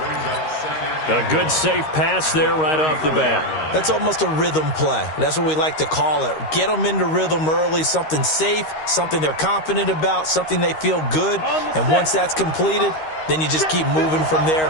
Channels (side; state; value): right; late; 13 ms